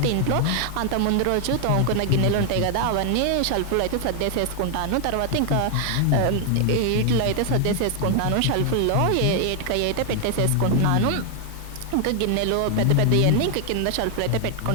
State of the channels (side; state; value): both; different; correlation 0.00